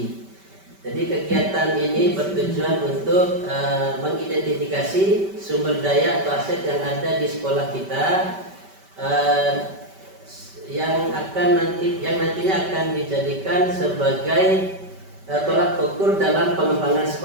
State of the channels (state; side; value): late; left; 5.2 ms